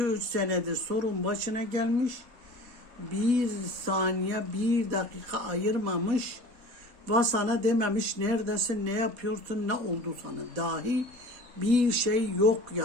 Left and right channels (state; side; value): late; left; 4.1 ms